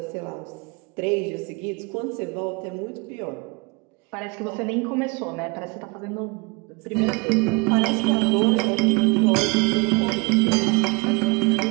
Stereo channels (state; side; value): quieter; left; 28.7 dB